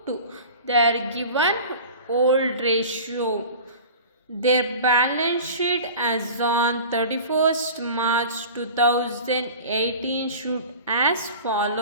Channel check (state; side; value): inverted; both; correlation -0.38